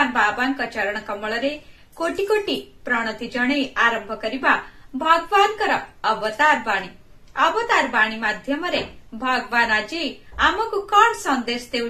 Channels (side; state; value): both; identical; correlation 1.00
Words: बाबा चरण कमल कोटि कोटि प्रणति जणे आरंभ करिबा भगवानकर अवतार बाणी माध्यम भगवान आज आमको कौन संदेश